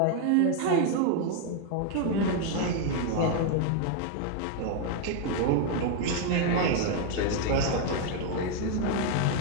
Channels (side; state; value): both; different; correlation 0.00